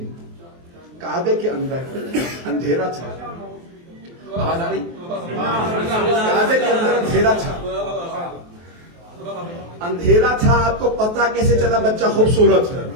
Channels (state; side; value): late; left; 23 ms